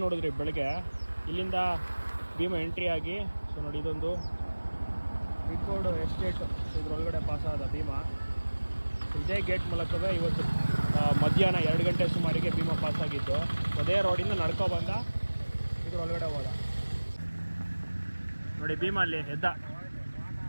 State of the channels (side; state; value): both; inverted; correlation -1.00